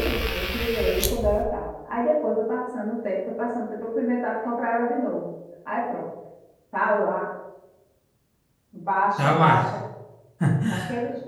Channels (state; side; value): identical; both; correlation 1.00